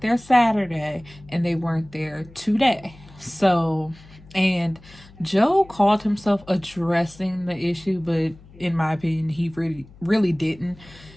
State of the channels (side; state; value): left; noise; hum, 23 dB below the sound